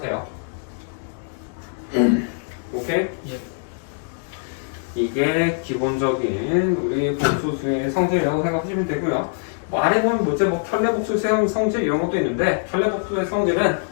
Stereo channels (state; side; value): silent; right; digital silence